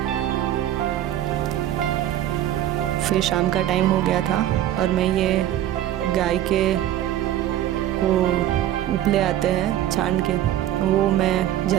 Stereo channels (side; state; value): left; quieter; 12.4 dB